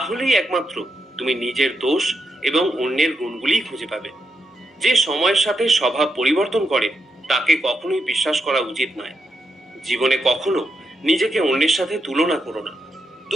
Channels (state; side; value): normal; both; correlation 0.84